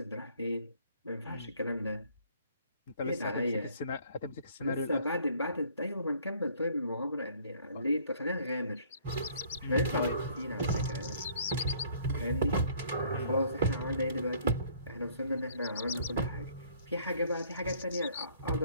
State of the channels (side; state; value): both; inverted; correlation -0.59